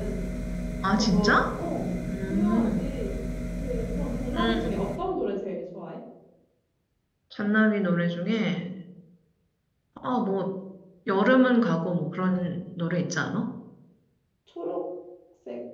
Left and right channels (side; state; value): both; identical; correlation 1.00